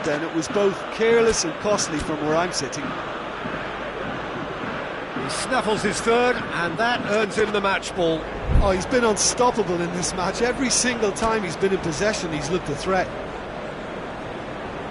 then. It was both careless and costly from where I'm sitting. He snaffles his third, and that earns him the match ball. Oh, he's been unstoppable in this match. Every single time he's been in possession, he's looked a threat.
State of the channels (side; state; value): both; identical; correlation 1.00